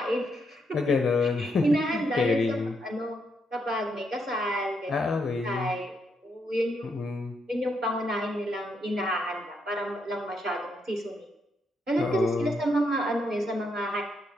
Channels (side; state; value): both; normal; correlation 0.78